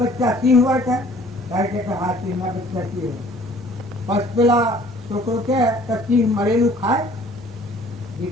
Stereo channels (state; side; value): normal; both; correlation 0.54